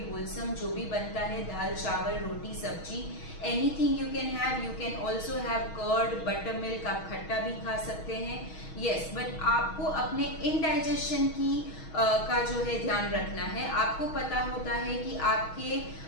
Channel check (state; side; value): late; right; 6.3 ms